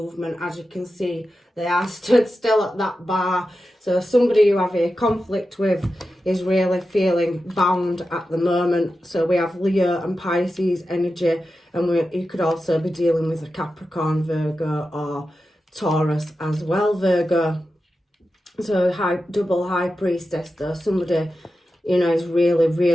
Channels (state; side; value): normal; both; correlation 0.91